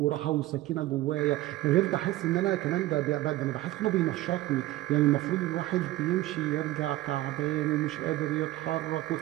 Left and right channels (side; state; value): left; quieter; 16.5 dB